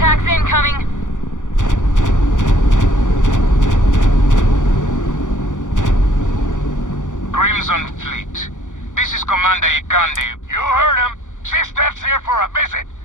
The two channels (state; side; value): late; right; 0.87 ms